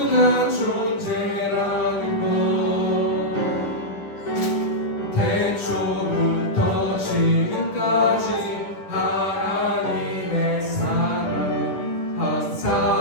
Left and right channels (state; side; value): late; right; 10 ms